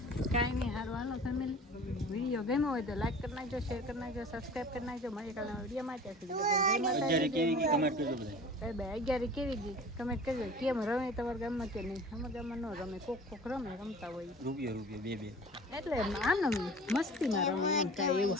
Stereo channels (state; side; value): normal; both; correlation 0.42